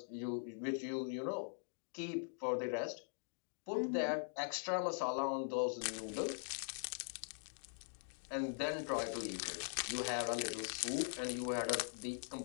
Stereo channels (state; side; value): silent; right; digital silence